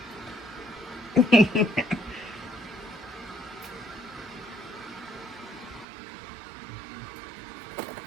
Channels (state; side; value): drops out; left; at 5.9 s